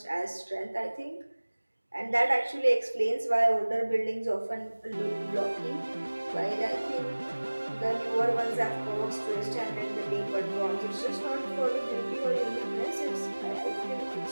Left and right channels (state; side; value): inverted; both; correlation -1.00